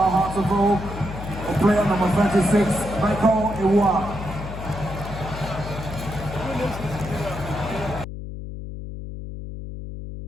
of Oak. Player number 26, Michael Iwa.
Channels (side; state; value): left; noise; hum, 9 dB below the sound